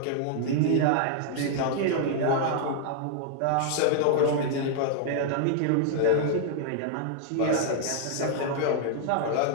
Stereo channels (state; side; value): different; both; correlation 0.00